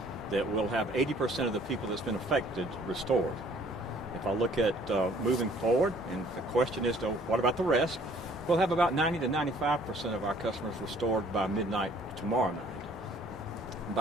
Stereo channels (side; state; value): both; normal; correlation 0.58